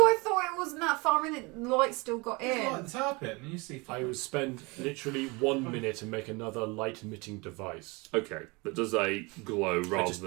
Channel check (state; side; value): quieter; left; 26.7 dB